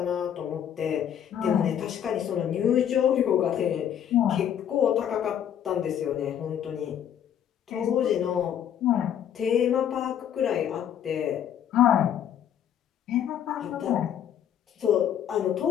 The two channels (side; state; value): right; quieter; 9.6 dB